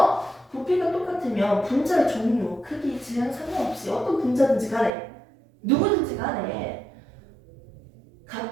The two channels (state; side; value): drops out; left; at 4.9 s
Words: 부피가 똑같으면 분자의 종류, 크기, 질량 상관없이 어떤 분자든지 간에 누구든지 간에